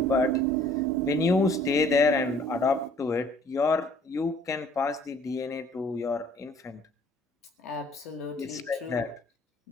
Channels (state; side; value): normal; both; correlation 0.56